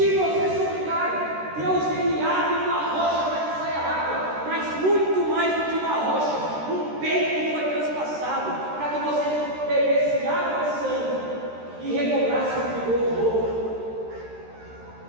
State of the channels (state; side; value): late; left; 13 ms